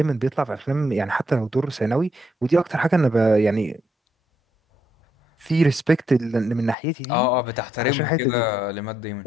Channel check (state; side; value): drops out; right; at 6.8 s